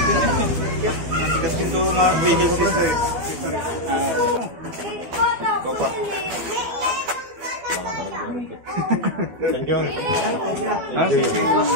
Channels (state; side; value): late; left; 12 ms